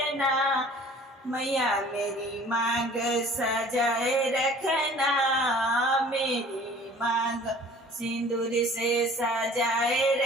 मैया मेरी मांग सजाए रखना, मेरी मांग सिंदूर से सजाए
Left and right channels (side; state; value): both; normal; correlation 0.49